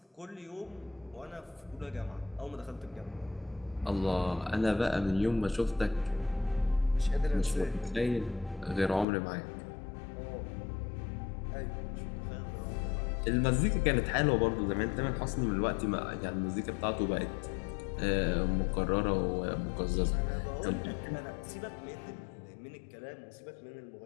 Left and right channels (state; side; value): drops out; right; at 9.1 s